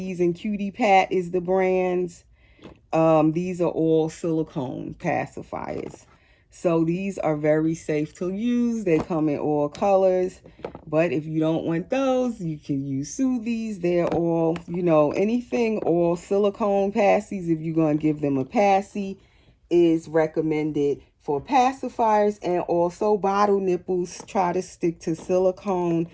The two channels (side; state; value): both; identical; correlation 1.00